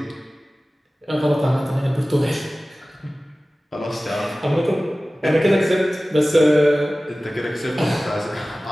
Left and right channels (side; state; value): both; normal; correlation 0.97